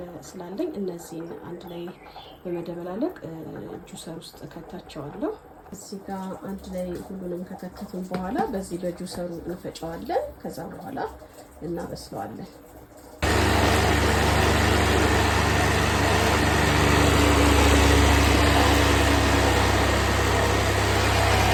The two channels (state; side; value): identical; both; correlation 1.00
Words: ስላለኝ እነዚህን አንድ ላይ በመደበላለቅ ጁሰር ውስጥ ከታቸዋለሁ። እዚህ ጋር አንድ ላይ ሁሉንም ከከተትን በኋላ በዚህ በጁሰሩ እንፈጨዋለን። ከዛ በኋላ እናበስለዋለን።